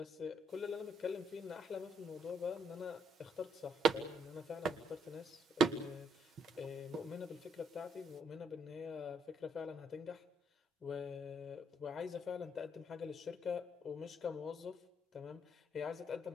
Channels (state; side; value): normal; both; correlation 0.72